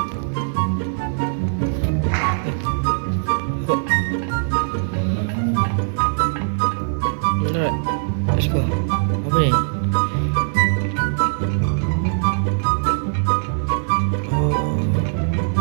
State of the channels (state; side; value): silent; left; digital silence